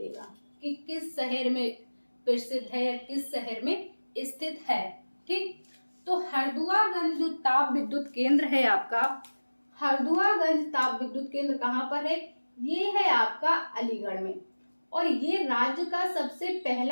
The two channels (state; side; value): inverted; both; correlation -1.00